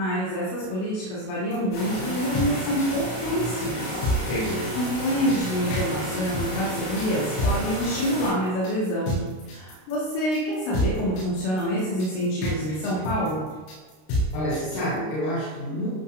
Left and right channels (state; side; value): late; right; 32 ms